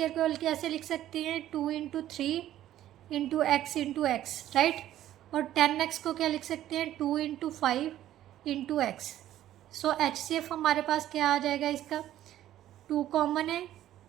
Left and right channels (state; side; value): quieter; left; 12.7 dB